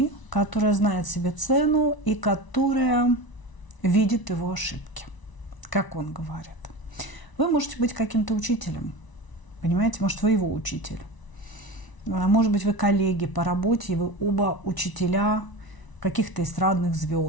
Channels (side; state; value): right; late; 1.0 ms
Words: которая знает себе цену и которая видит его ошибки, как он говорит. Вы можете быть каким-то учителем, понимаете, может, вы его учитель. Может быть, вы коллеги по работе, и вы оба учителя каких-то эстрадных